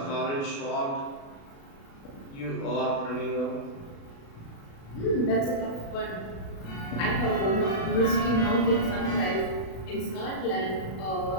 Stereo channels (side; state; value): right; late; 36 ms